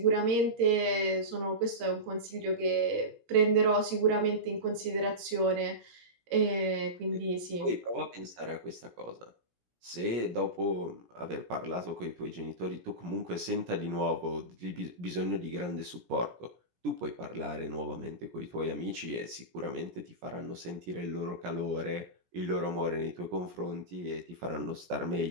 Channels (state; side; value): late; left; 17 ms